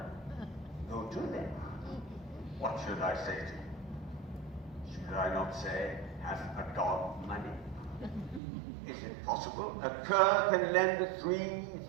Go to them. What should I say to you? Should I not say, hath a dog money? Is it possible a cur can lend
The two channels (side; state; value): left; drops out; at 8.4 s